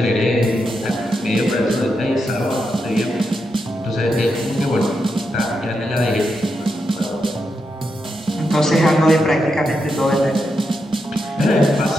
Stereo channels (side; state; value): both; normal; correlation 0.85